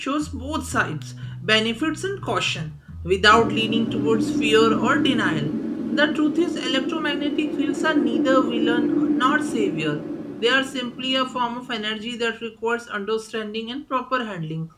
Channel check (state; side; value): identical; both; correlation 1.00